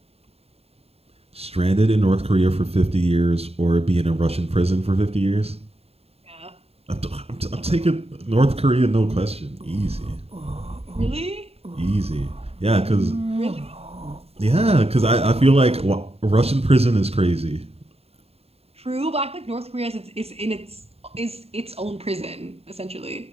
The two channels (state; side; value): late; left; 0.29 ms